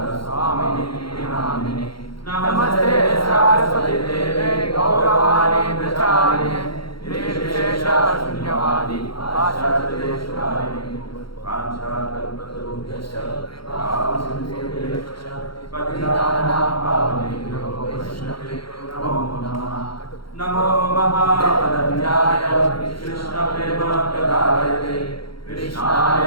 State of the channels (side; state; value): right; late; 0.73 ms